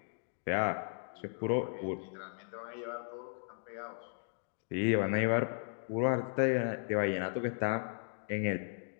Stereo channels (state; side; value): silent; right; digital silence